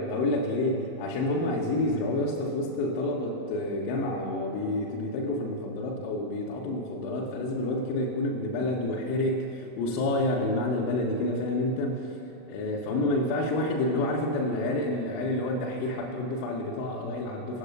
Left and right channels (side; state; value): right; late; 39 ms